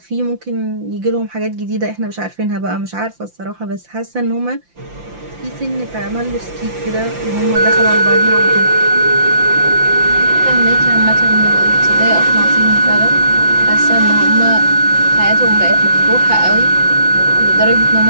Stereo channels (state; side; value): late; left; 5.8 ms